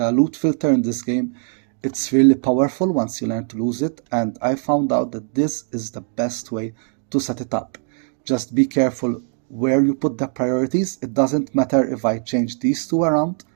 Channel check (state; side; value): silent; left; 59 dB below the other